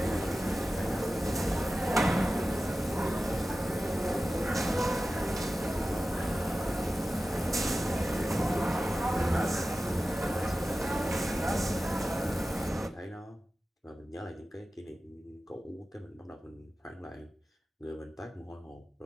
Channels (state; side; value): normal; both; correlation 0.94